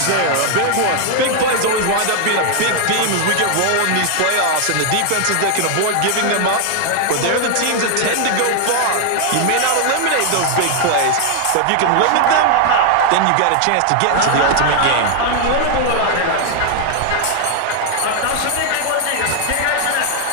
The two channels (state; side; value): different; both; correlation 0.00